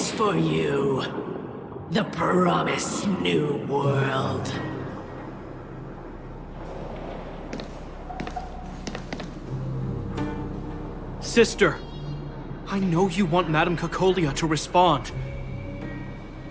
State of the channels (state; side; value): identical; both; correlation 1.00